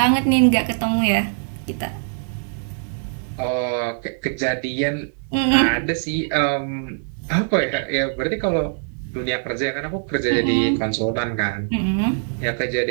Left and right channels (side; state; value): left; silent; digital silence